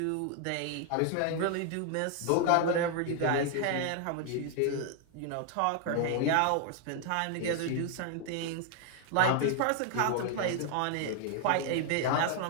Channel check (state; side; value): different; both; correlation 0.00